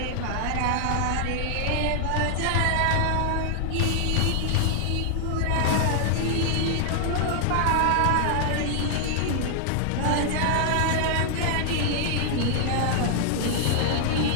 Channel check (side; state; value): both; different; correlation 0.00